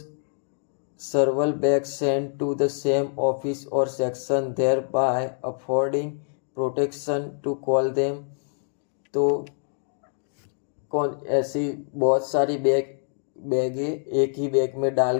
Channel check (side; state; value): right; silent; 61 dB below the other